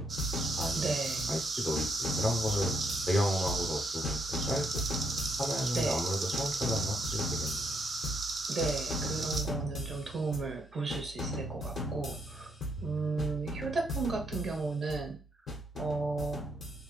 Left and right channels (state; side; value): normal; both; correlation 0.75